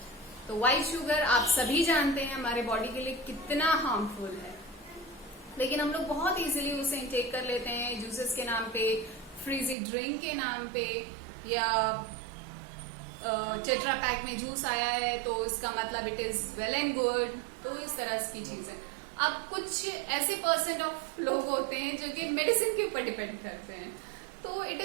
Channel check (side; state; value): left; drops out; at 9.8 s